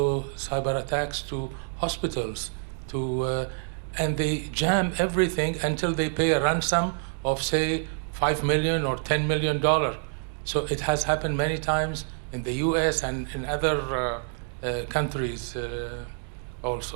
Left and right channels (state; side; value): silent; left; 60 dB below the other